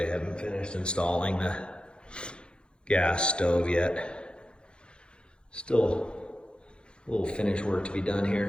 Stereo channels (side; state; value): right; late; 0.053 ms